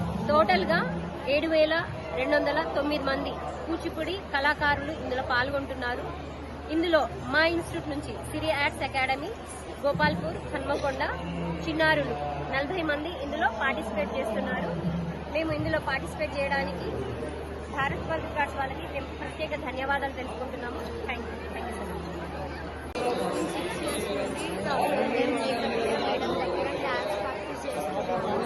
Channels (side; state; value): both; identical; correlation 1.00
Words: టోటల్గా 7209 మంది కూచిపూడి కళాకారులు ఇందులో పాల్గొంటున్నారు. ఇందులో మా ఇన్స్టిట్యూట్ నుంచి సిరి ఆర్ట్స్ అకాడమీ, గోపాల్పూర్, హన్మకొండ చిన్నారులు 40 మంది ఇందులో పార్టిసిపేట్ చేస్తున్నారు. మేము ఇందులో పార్టిసిపేట్ చేయడానికి భారత్ వరల్డ్ రికార్డ్స్ వాళ్ళకి మేము ప్రత్యేక ధన్యవాదాలు తెలుపుకుంటున్నాము. Thank you so much.